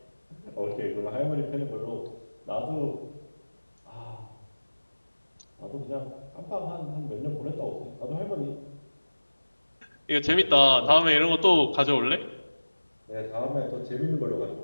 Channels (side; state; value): both; inverted; correlation -1.00